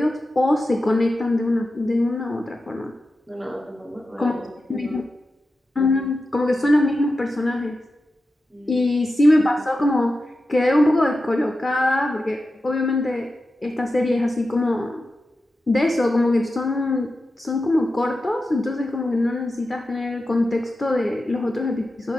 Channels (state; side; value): normal; both; correlation 0.92